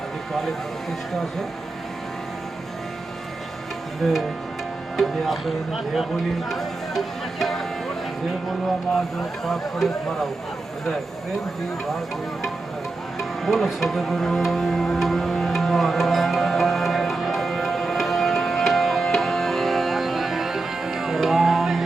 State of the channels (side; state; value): left; quieter; 3.3 dB